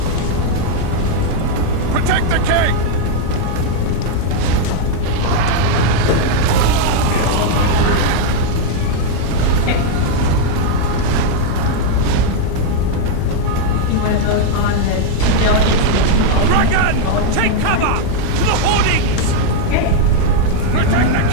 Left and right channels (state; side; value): different; both; correlation 0.00